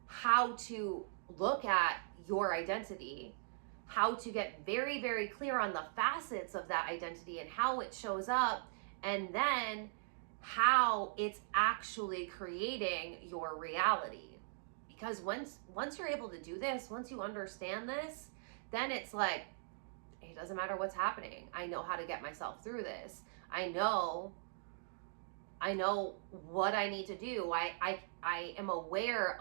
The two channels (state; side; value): silent; left; digital silence